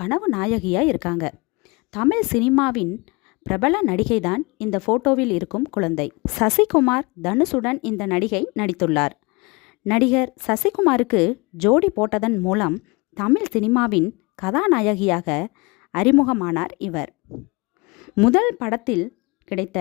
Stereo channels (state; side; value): quieter; right; 26.8 dB